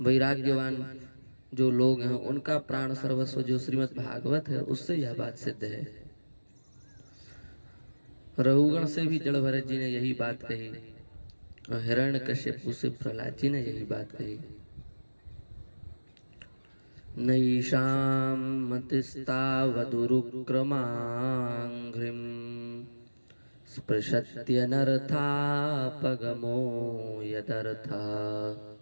वैराग्यवान जो लोग हैं उनका प्राण सर्वस्व जो श्रीमद् भागवत है, उससे यह बात सिद्ध है। रघुगण से भी जड़ भरत जी ने यही बात कही और हिरण्यकश्यप से प्रहलाद जी ने यही बात कही। नैषां मतिस्तावदुरुक्रमाङ्घ्रिं स्पृशत्यनर्थापगमो यदर्था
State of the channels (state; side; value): inverted; both; correlation -1.00